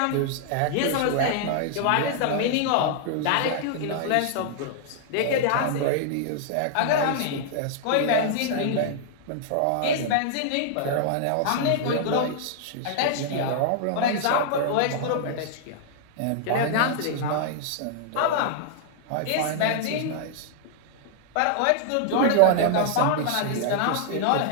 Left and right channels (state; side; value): different; both; correlation -0.01